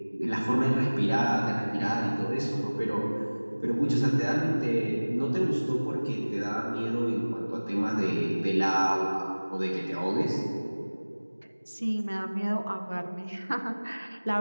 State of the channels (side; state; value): both; inverted; correlation -1.00